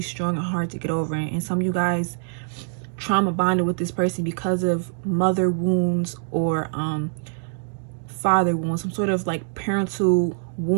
strong and hard to get over. And some of you guys trauma bonded with this person because of mother wounds or father wounds. Some sort of like parental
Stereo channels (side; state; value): left; silent; digital silence